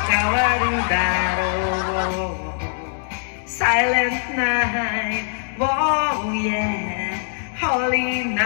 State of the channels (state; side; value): silent; right; 64 dB below the other